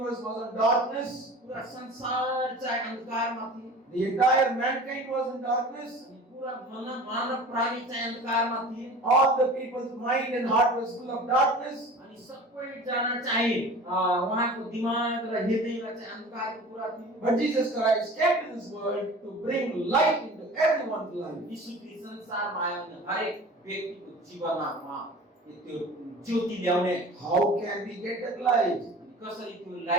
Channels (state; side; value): normal; both; correlation 0.40